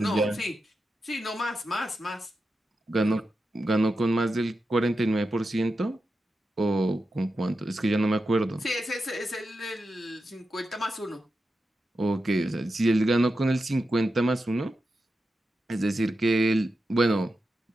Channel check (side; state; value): both; normal; correlation 0.90